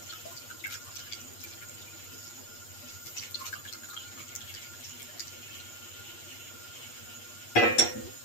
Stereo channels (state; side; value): late; right; 8.5 ms